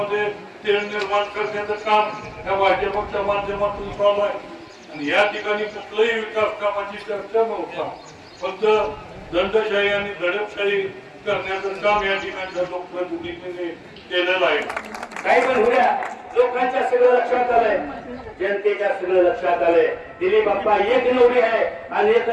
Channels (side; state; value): both; identical; correlation 1.00